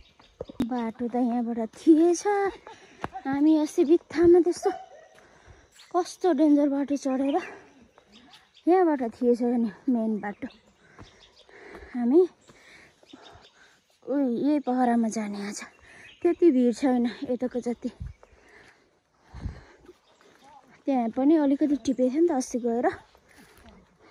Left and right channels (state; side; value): identical; both; correlation 1.00